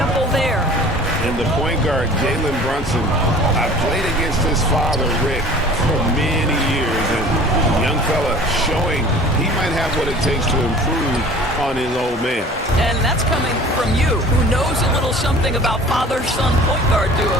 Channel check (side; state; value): both; normal; correlation 0.45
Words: there. And the point guard, Jalen Brunson, I played against his father, Rick, for many years. And young fella showing he might have what it takes to improve on his old man. And that's coming from you, who knows a little something about father-son point guard